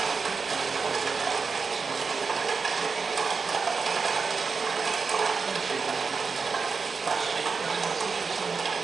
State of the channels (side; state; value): left; quieter; 5.0 dB